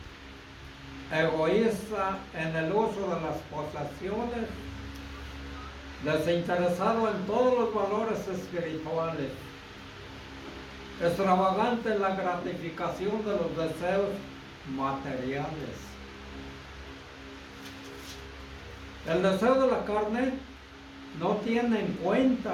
egoísta en el uso de las posesiones, desinteresado en todos los valores espirituales, extravagante en la gratificación de los deseos materiales. El deseo de la carne no tiene en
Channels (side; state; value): both; identical; correlation 1.00